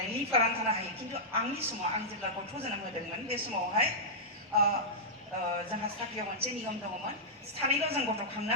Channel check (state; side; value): normal; both; correlation -0.10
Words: लिभ लानानै थानो हायो खिन्थु आंनि समाव आं जेब्ला गथ' जोनोम होदोंमोन बे समावहाय जोंहा साख्रियाव मोनसे नियम दङमोन सानैल' जों गथ' खांनो